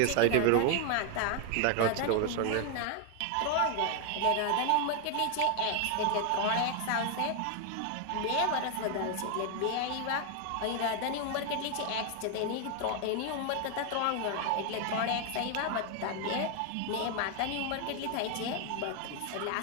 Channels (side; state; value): both; different; correlation 0.01